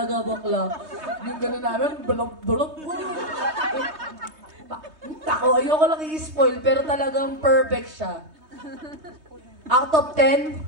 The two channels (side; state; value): left; late; 3.2 ms